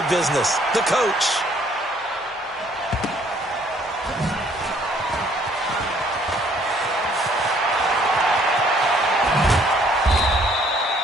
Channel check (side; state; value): both; normal; correlation 0.62